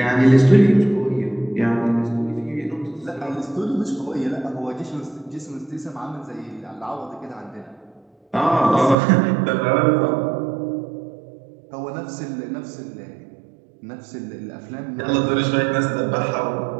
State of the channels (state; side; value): drops out; left; at 9.0 s